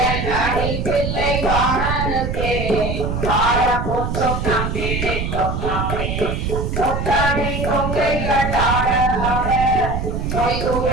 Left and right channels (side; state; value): right; noise; rumble, 2 dB below the sound